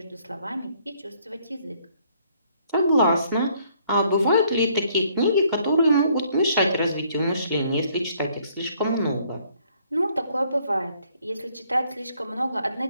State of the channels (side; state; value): both; inverted; correlation -0.64